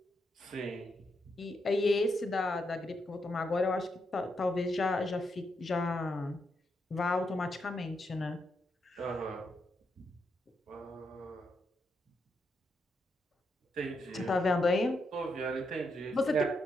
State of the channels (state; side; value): normal; both; correlation 0.81